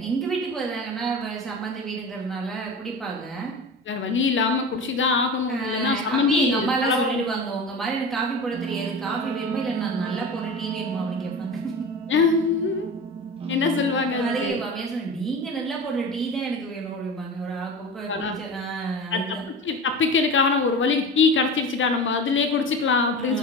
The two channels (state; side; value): normal; both; correlation 0.31